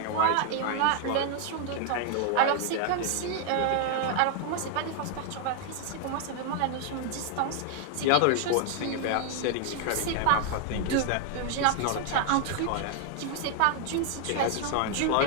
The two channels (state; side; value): different; both; correlation 0.00